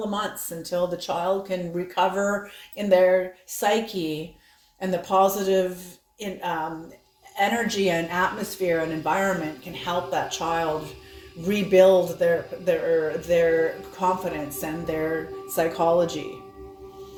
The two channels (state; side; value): identical; both; correlation 1.00